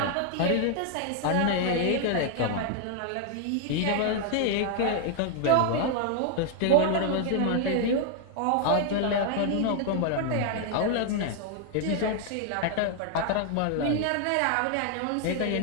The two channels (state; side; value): different; both; correlation 0.00